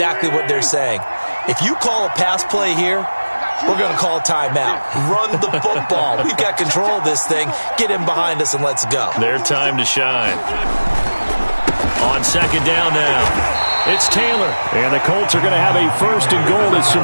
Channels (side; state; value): both; inverted; correlation -1.00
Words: what they're saying. If you call a pass play here, we're going to call a timeout. Run the football. We've got control of this thing. Get in behind us and let's go. Their time to shine. On 2nd down now, it's Taylor. And the Colts are going to have a 1st and goal. There's